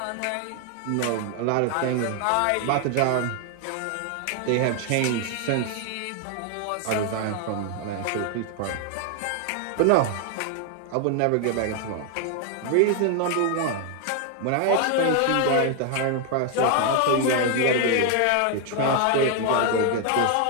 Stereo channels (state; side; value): different; both; correlation 0.00